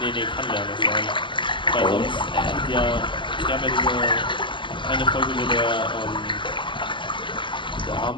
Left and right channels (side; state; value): right; late; 0.24 ms